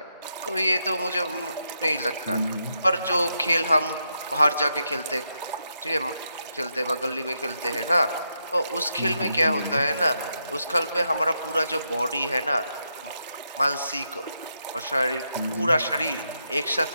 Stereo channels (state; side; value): inverted; both; correlation -0.82